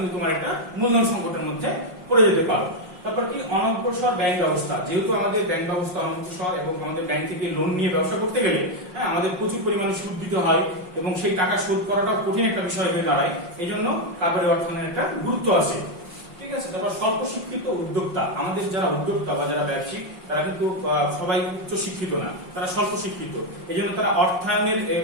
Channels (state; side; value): late; left; 5.6 ms